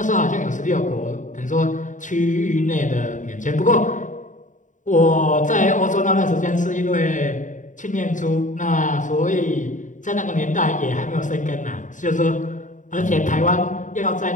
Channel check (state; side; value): late; right; 0.37 ms